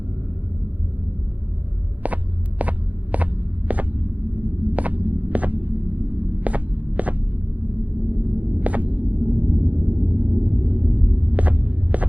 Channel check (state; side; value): late; left; 0.070 ms